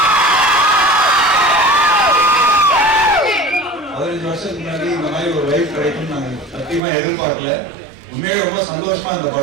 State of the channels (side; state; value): left; drops out; at 6.8 s